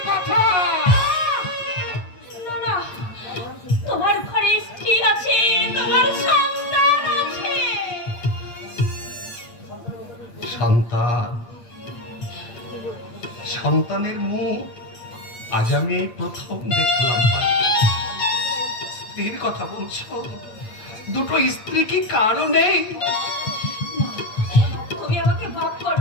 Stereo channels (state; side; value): late; right; 8.6 ms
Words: কথা। না, তোমার ঘরে স্ত্রী আছে, তোমার সন্তান আছে। সন্তানের মুখ আজ আমি প্রথম দেখলাম। স্ত্রীর কথা বলছো? দুটো স্ত্রী কি কারো নেই? তুমি আমাকে ভাব